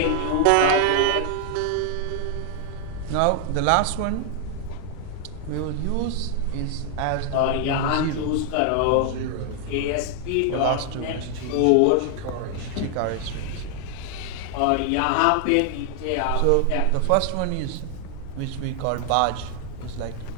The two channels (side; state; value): both; different; correlation 0.00